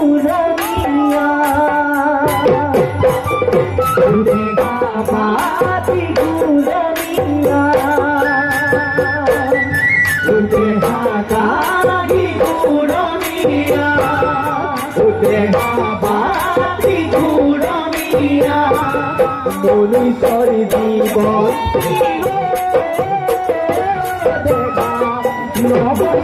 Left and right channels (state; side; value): identical; both; correlation 1.00